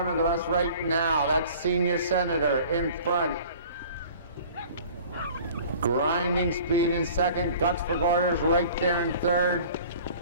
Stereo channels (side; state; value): both; inverted; correlation -0.46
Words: of us right now, that's Senior Senator in front. Grinding Speed in second, Guts for Garters right there in third.